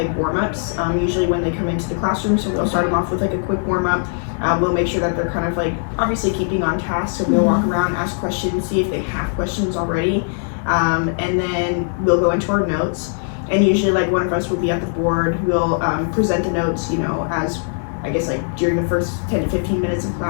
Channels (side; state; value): right; silent; 66 dB below the other